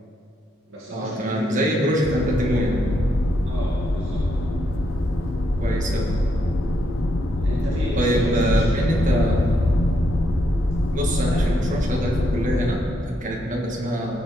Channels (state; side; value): normal; both; correlation 0.78